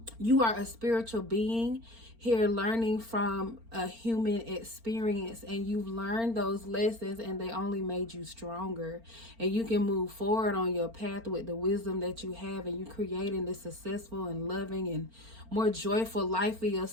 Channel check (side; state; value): left; late; 4.4 ms